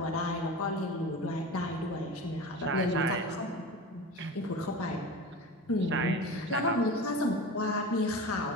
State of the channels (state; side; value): normal; both; correlation 0.31